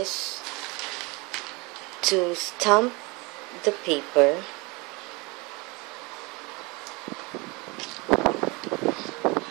to stamp the paper.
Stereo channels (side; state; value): left; quieter; 26.7 dB